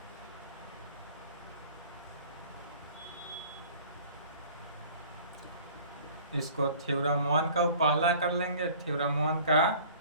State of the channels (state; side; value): inverted; both; correlation -0.48